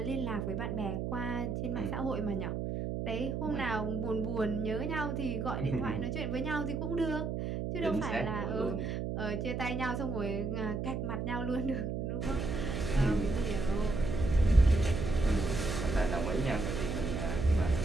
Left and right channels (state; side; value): noise; right; hum, 2 dB below the sound